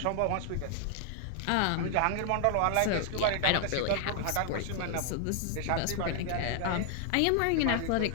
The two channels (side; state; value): both; different; correlation 0.00